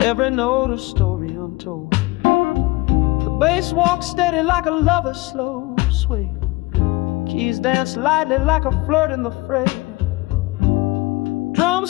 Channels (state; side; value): quieter; right; 21.8 dB